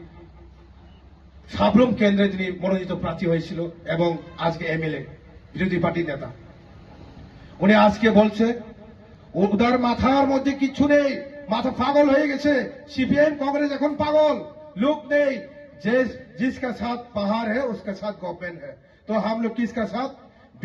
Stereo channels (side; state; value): both; identical; correlation 1.00